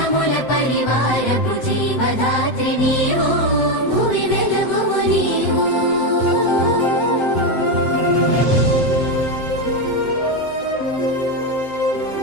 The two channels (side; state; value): right; late; 7.8 ms